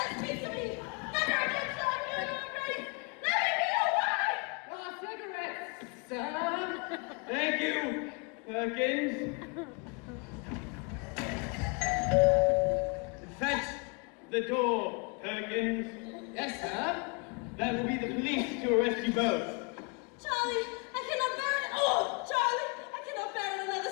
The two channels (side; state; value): right; quieter; 32.1 dB